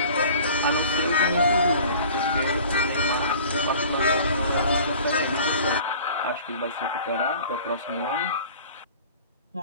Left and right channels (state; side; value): inverted; both; correlation -0.45